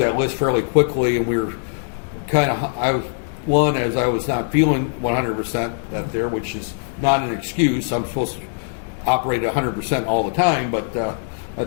list fairly quickly, and we were as I was not feeling 100% that there, which is not an excuse. I'm supposed to operate at 100% all the time, but that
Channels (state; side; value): silent; right; 65 dB below the other